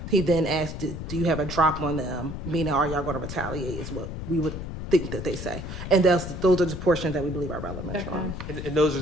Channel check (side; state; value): left; noise; rumble, 7 dB below the sound